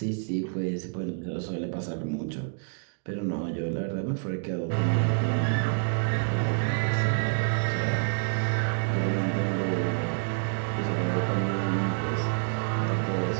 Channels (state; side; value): silent; left; 59 dB below the other